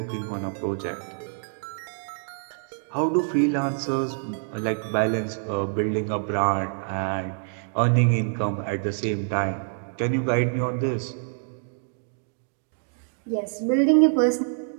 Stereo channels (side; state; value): left; silent; digital silence